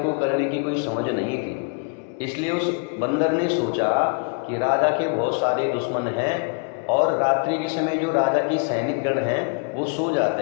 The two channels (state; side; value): quieter; right; 35.2 dB